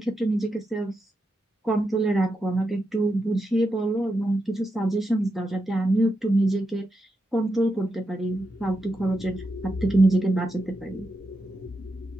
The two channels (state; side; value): normal; both; correlation 0.86